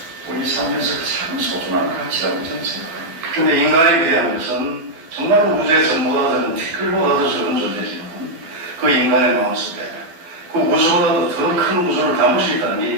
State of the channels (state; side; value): late; left; 12 ms